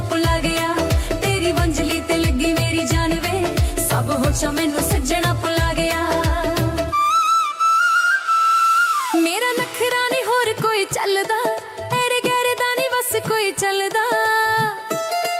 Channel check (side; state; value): both; identical; correlation 1.00